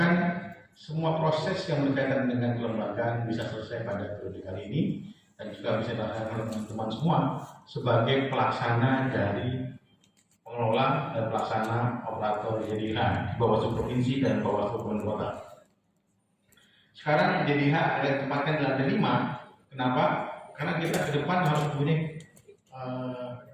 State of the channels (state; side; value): identical; both; correlation 1.00